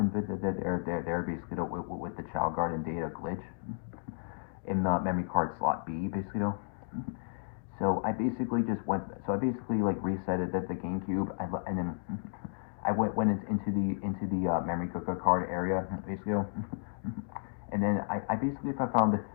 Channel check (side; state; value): right; silent; digital silence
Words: there basically with the Chao Garden data glitch in the memory card slot B basically though. So I basically like resetted the GameCube and then I went into the memory card area basically, and then I basically found